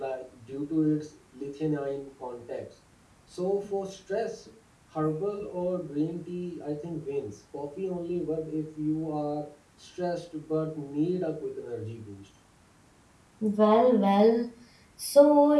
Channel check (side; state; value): both; identical; correlation 1.00